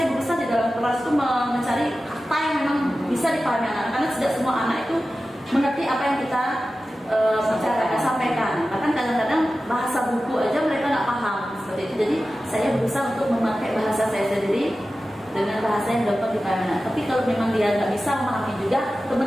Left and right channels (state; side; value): normal; both; correlation 0.94